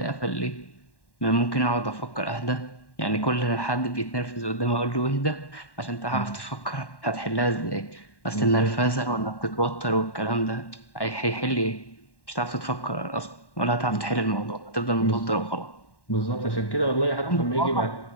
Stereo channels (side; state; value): right; late; 1.1 ms